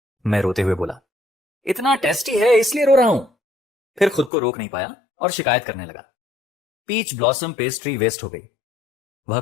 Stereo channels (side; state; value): right; drops out; at 4.3 s